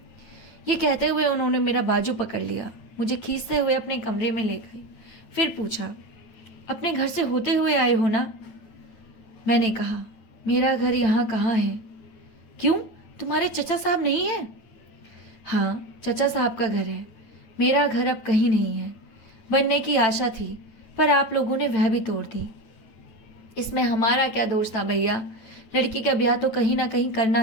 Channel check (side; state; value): right; late; 9.0 ms